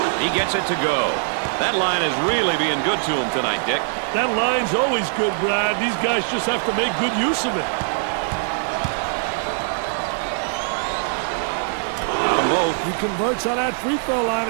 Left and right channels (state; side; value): silent; left; digital silence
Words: He gets it to go. That line is really being good to him tonight, Dick. That line's always good, Brad. These guys just have to make good use of it. He converts on that free throw line,